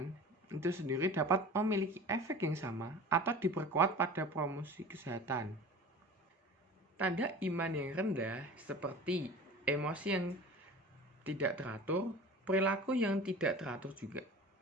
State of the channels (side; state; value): both; normal; correlation 0.38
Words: itu sendiri dapat memiliki efek yang sama atau diperkuat pada promosi kesehatan. Tanda iman yang rendah seperti emosi yang tidak teratur, perilaku yang tidak teratur juga.